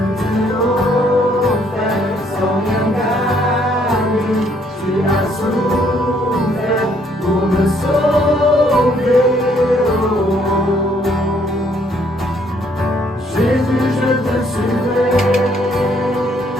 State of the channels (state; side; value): normal; both; correlation 0.67